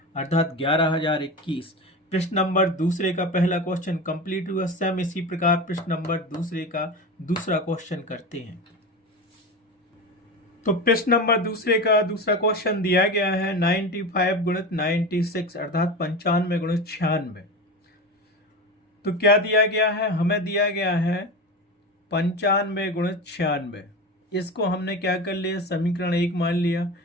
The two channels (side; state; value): both; normal; correlation 0.25